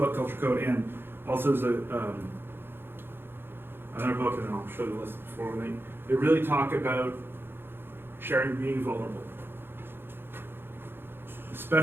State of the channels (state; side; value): late; left; 0.10 ms